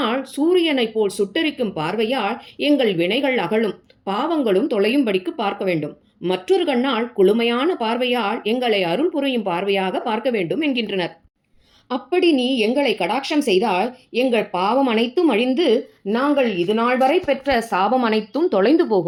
சூரியனை போல் சுட்டரிக்கும் பார்வையால் எங்கள் வினைகள் அகலும், பாவங்களும் தொலையும்படிக்கு பார்க்க வேண்டும். மற்றொரு கண்ணால் குளுமையான பார்வையால் எங்களை அருள் புரியும் பார்வையாக பார்க்க வேண்டும் என்கின்றனர். அப்படி நீ எங்களை கடாட்சம் செய்தால் எங்கள் பாவம் அனைத்தும் அழிந்து நாங்கள் இது நாள் வரை பெற்ற சாபம் அனைத்தும் தொலைந்து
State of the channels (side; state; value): both; identical; correlation 1.00